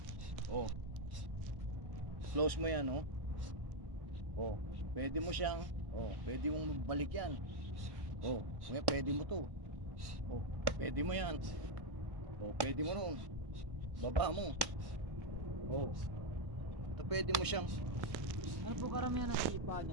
Oh. Close mo yan, oh. Oh, pwede mo siyang, pwede mong balik yan. Oh, pwede mo to. Oh, pwede mo yan. Oh, pwede mo ron. Baba mo. Oh. Ito pwede mo siyang Ano po karamihan ng sipa niyo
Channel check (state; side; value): late; left; 1.1 ms